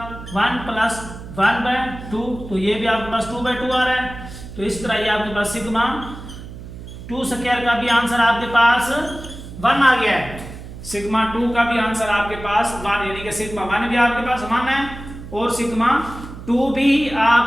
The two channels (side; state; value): right; noise; hum, 13 dB below the sound